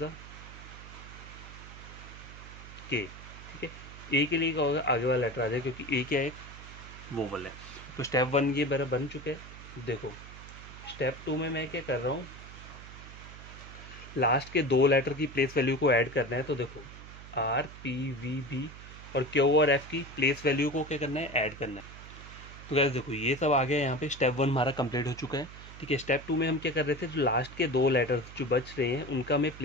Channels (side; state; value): right; noise; hum, 15 dB below the sound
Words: के, ठीक है। ए के लिए क्या होगा, आगे वाला लेटर आ जाएगा, क्योंकि ए क्या है, एक वोवल है। तो स्टेप 1 ये मेरा बन चुके हैं। देखो स्टेप 2 में मैं क्या कर रहा हूँ, लास्ट के 2 लेटर की प्लेस वैल्यू को ऐड करना है। तो देखो आर, पी, वी, बी और क्यू और एफ की प्लेस वैल्यू को क्या करना है, ऐड करना है। तो गाइस देखो ये सब आ गया, यहाँ पे स्टेप 1 हमारा कंप्लीट हो चुका है, ठीक है। स्टेप 2 में हम क्या कर रहे थे, जो लास्ट के 2 लेटर्स जो बच रहे हैं उनका हमें